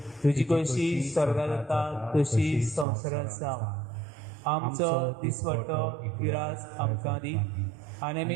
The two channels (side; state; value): left; drops out; at 2.9 s